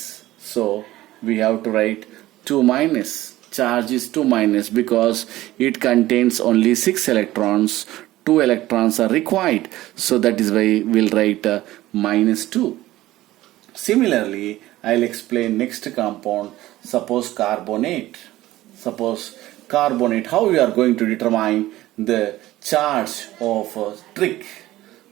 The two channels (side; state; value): left; quieter; 16.2 dB